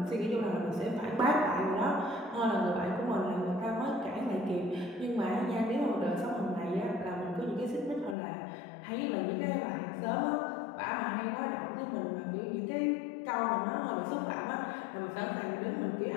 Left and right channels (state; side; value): drops out; right; at 8.2 s